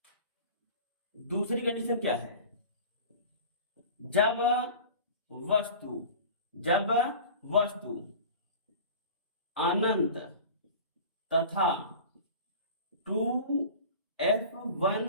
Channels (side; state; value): both; inverted; correlation -0.39